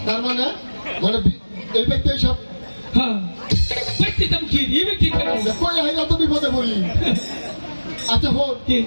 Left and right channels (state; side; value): inverted; both; correlation -1.00